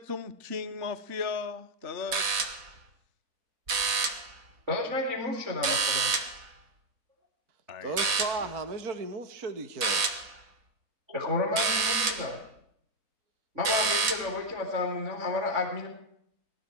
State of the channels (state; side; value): late; left; 4.1 ms